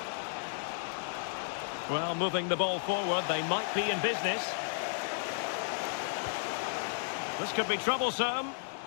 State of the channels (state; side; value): silent; right; digital silence